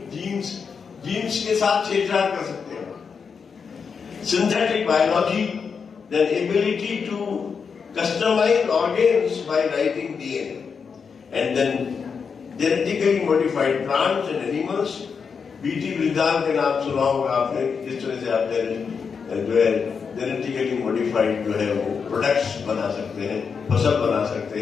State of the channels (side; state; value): right; quieter; 5.9 dB